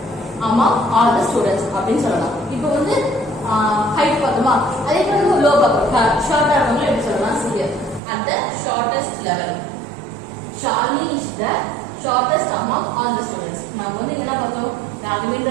among all the students அப்படின்னு சொல்லலாம். இப்போ வந்து ஹைட் பார்த்தோமா, அதே போல லோ பார்ப்போம், ஷார்ட்டா இருக்கவங்க எப்படி சொல்லலாம்? Serious. At the shortest level, Shalini is the shortest among all the students. நம்ம வந்து என்ன பார்த்தோம்?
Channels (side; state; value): left; drops out; at 8.0 s